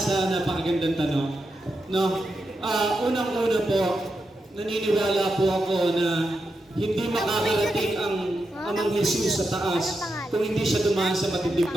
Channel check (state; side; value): normal; both; correlation 0.86